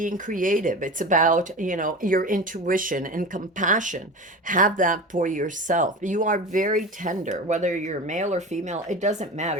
creative. It's about your intuition and compassion. Have that for yourself. You are very tender, whether you're male or female. It doesn't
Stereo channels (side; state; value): both; normal; correlation 0.30